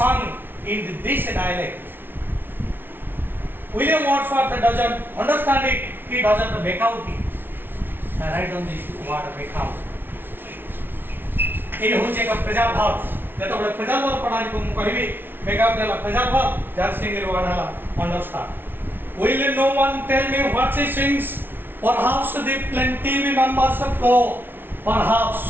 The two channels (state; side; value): late; left; 0.10 ms